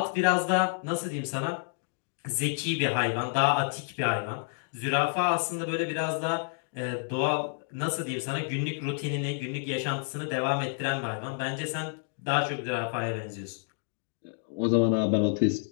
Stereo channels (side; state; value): right; silent; 58 dB below the other